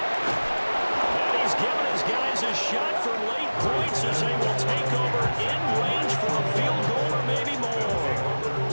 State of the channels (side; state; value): both; inverted; correlation -1.00